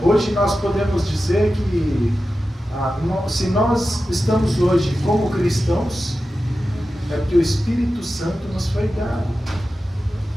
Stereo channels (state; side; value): normal; both; correlation 0.93